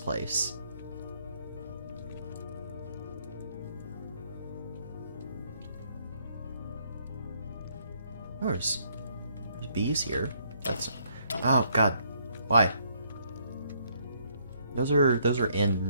There's bees here. That's... Oh god. Why? Those are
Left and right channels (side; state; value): both; inverted; correlation -0.69